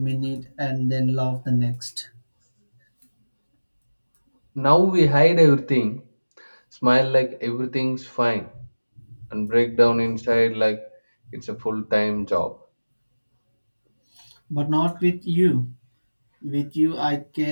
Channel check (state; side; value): inverted; both; correlation -1.00